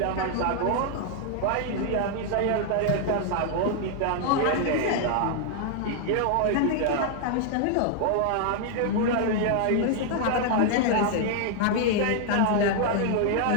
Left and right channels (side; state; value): both; different; correlation 0.00